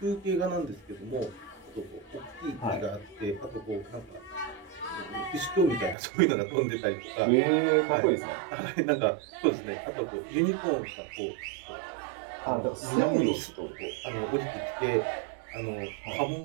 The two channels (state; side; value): drops out; left; at 6.0 s